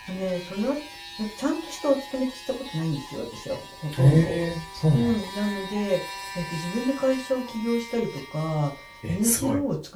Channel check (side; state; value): both; identical; correlation 1.00